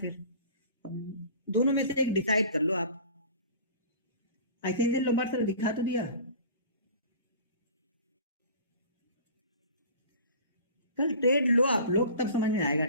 दोनों में से एक डिसाइड कर लो आप। ऐसे ही लोबार सर दिखा तो दिया, कल ट्रेड लो आप लोग तब समझ में आएगा,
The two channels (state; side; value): inverted; both; correlation -0.41